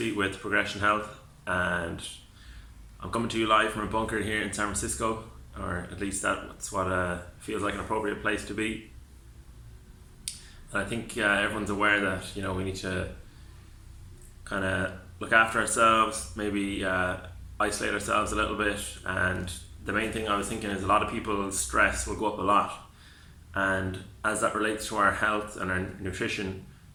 with Progression Health, and I'm coming to you live from a bunker here in San Francisco, or at least that's what feels like an appropriate place to be. And I think everyone's aware that we need to kind of look after ourselves, maybe isolate ourselves a little bit. And the main thing I was thinking is a lot of people's stress will go up a lot, and as that relates to our health and our nutrition,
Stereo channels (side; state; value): both; identical; correlation 1.00